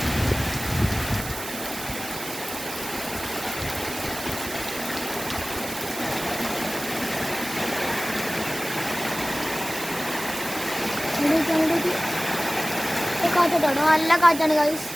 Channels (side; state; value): right; noise; hiss, 9 dB below the sound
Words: കാറ്റാട്ടോ, നല്ല കാറ്റാണ് ഗൈസ്.